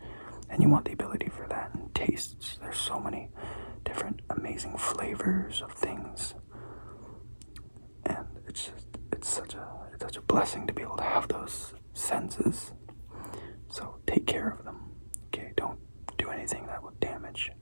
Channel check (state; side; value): inverted; both; correlation -1.00